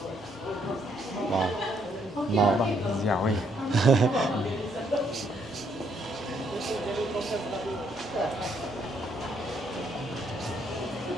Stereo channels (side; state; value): left; noise; hum, 26 dB below the sound